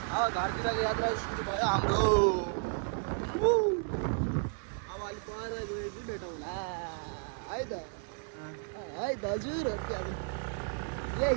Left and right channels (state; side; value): silent; left; 56 dB below the other